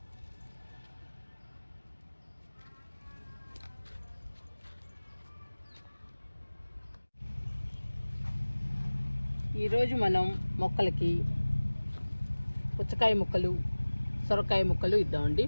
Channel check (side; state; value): both; inverted; correlation -1.00